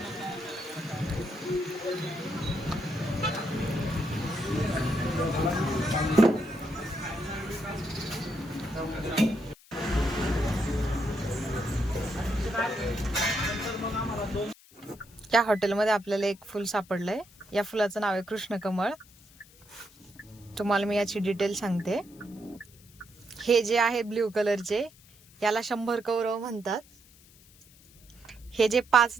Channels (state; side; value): noise; left; hiss, 25 dB below the sound